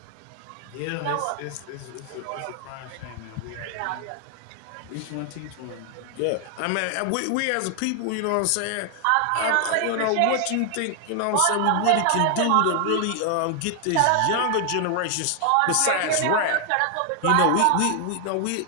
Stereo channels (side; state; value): both; different; correlation 0.00